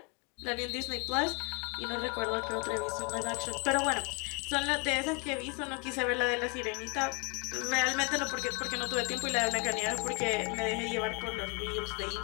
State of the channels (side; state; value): right; quieter; 31.2 dB